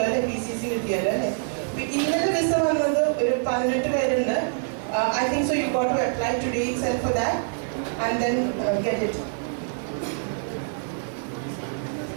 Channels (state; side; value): silent; left; digital silence